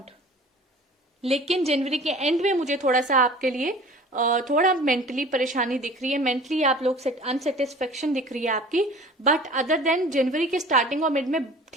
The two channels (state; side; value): normal; both; correlation 0.44